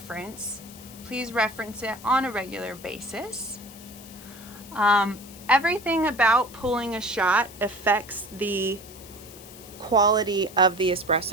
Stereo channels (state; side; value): noise; left; hiss, 18 dB below the sound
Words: Please reference it on a regular basis. Everything about pulling a shot affects the quality of the